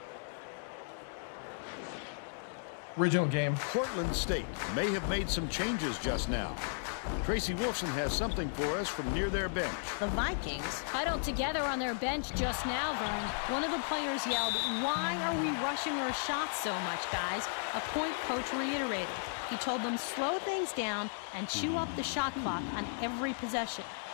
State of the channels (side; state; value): right; silent; digital silence